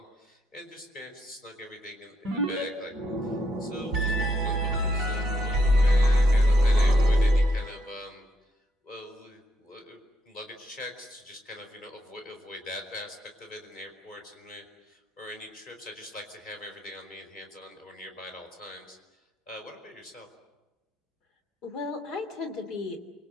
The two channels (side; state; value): both; normal; correlation 0.76